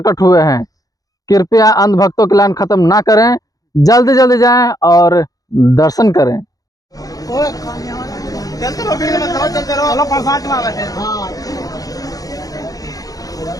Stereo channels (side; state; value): right; late; 0.17 ms